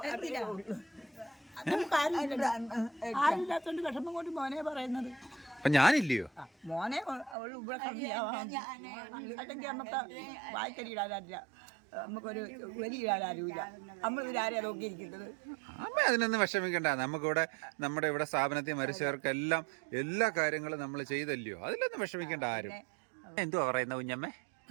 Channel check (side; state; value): left; drops out; at 7.4 s